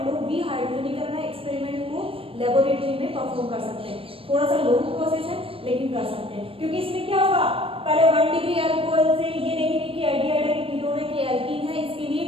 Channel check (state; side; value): late; left; 0.27 ms